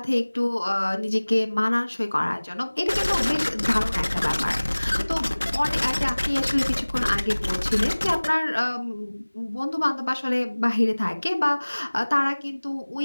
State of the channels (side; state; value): both; inverted; correlation -1.00